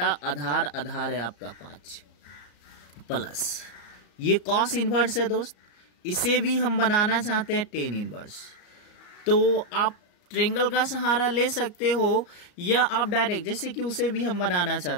आधार है आपका 5 प्लस ये कॉस इनवर्स है दोस्त। इसे भी हम बनाना चाहते हैं टेन इनवर्स, तो आप ट्रायंगल का सहारा ले सकते हो, या आप डायरेक्ट, जैसे कि उसे भी हम बनाना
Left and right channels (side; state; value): right; late; 34 ms